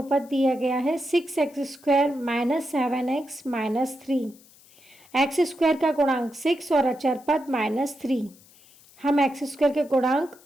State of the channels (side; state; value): left; noise; hiss, 26 dB below the sound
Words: दिया गया है 6x² - 7x - 3, x² का गुणांक 6 और अचर पद -3। हम x² के गुणांक